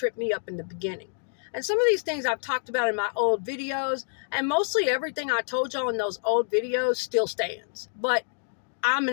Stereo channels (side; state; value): right; silent; digital silence